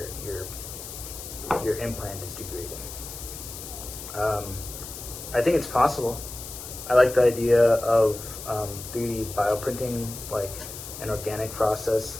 implant is degrading. I think it's possible. I like the idea of 3D bioprinting, like an organic process,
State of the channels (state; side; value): noise; left; hiss, 11 dB below the sound